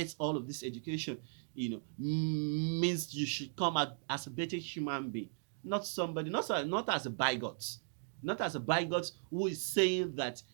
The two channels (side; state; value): left; silent; digital silence